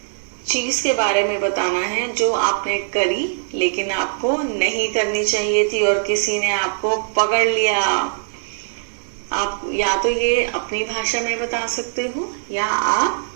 चीज के बारे में बताना है जो आपने करी लेकिन आपको नहीं करनी चाहिए थी और किसी ने आपको पकड़ लिया. आप या तो ये अपनी भाषा में बता सकते हो या आप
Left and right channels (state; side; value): silent; left; 65 dB below the other